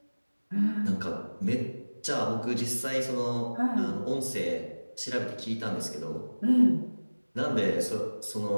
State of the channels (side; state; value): both; inverted; correlation -1.00